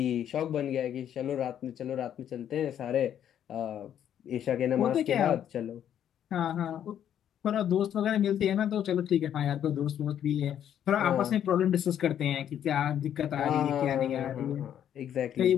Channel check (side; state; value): right; quieter; 9.9 dB